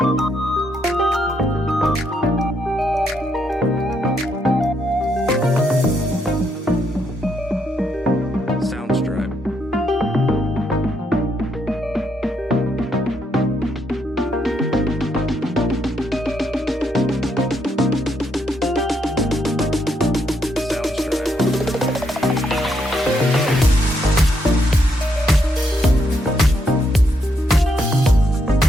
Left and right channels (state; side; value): normal; both; correlation 0.76